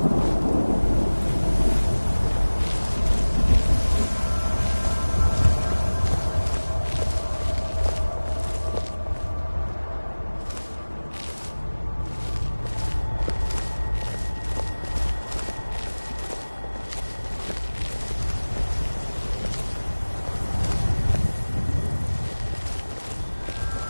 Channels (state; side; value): inverted; both; correlation -1.00